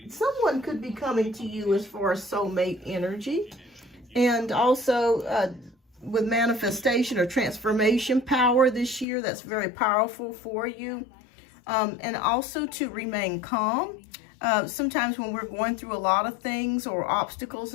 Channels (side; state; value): right; drops out; at 9.1 s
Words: could be coming to you as far as soulmate energy. And also with manifestation or transformation power this year, that's very powerful for you. And also to remain calm. Sometimes when we're going through a lot of things or obstacles